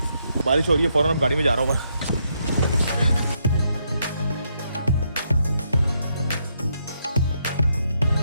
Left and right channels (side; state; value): both; inverted; correlation -0.77